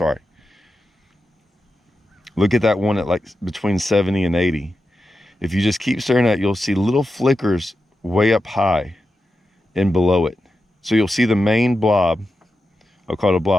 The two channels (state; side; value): normal; both; correlation 0.90